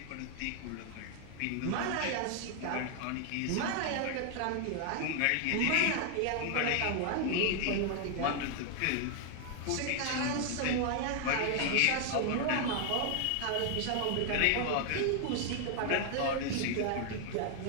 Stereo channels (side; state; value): both; different; correlation 0.00